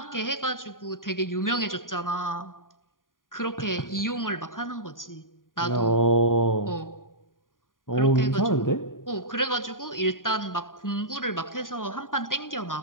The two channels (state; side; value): late; right; 0.90 ms